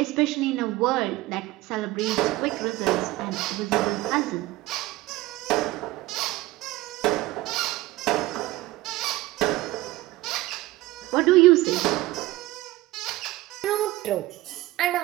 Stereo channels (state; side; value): quieter; left; 18.1 dB